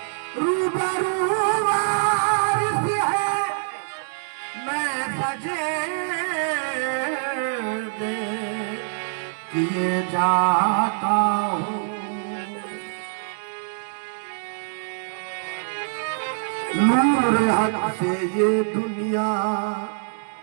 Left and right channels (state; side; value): silent; left; digital silence